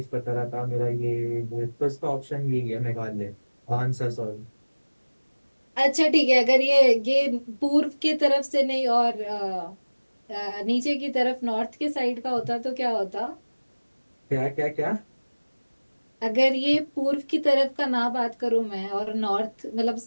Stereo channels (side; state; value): both; inverted; correlation -1.00